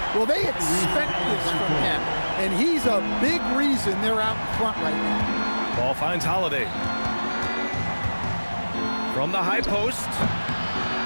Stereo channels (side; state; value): both; inverted; correlation -1.00